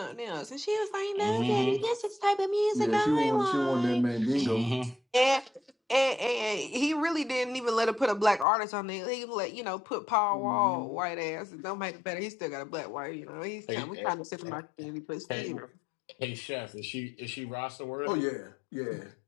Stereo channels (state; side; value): drops out; right; at 8.5 s